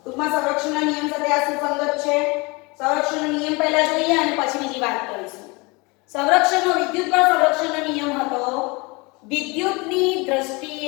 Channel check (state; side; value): quieter; right; 26.7 dB